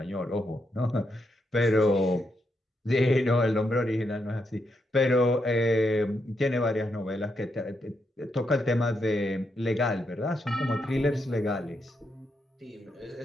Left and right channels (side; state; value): both; normal; correlation 0.81